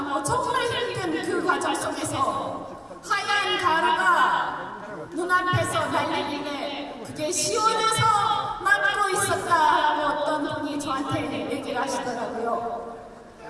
정말 힘든 그 과정 속에서 하얀 가루가 눈앞에서 날리는데 그게 시원해서 맞고 있었다라고 어떤 분이 저한테 얘기를 하시더라고요.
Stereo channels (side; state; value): both; identical; correlation 1.00